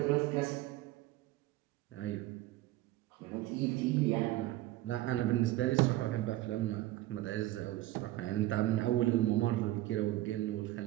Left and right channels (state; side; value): quieter; left; 16.4 dB